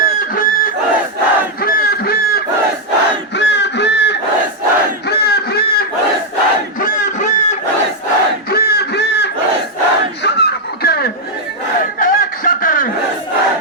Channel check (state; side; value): normal; both; correlation -0.01